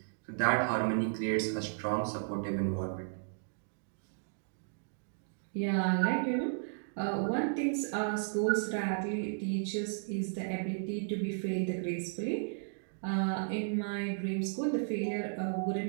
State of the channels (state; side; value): silent; left; digital silence